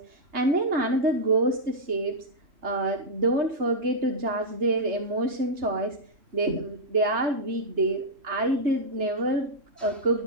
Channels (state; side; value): late; left; 3.3 ms